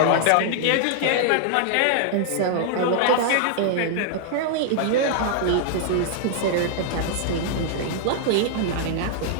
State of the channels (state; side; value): different; both; correlation -0.01